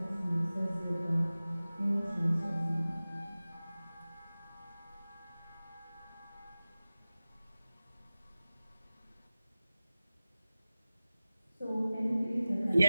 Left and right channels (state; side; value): inverted; both; correlation -0.97